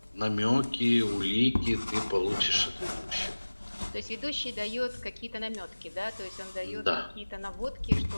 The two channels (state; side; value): inverted; both; correlation -1.00